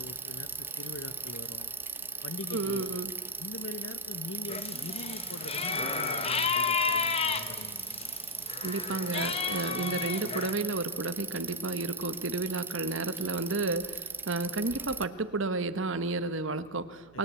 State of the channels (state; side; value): noise; right; hum, 24 dB below the sound